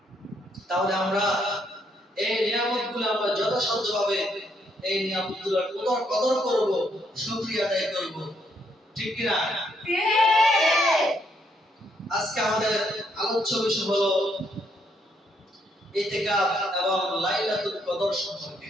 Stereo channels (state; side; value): normal; both; correlation 0.73